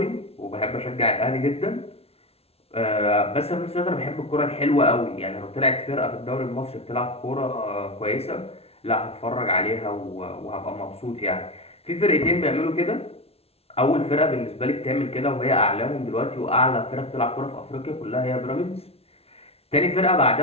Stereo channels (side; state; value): right; late; 0.29 ms